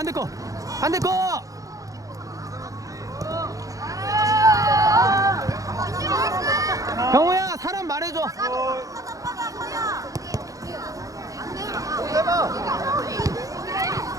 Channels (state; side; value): late; left; 0.17 ms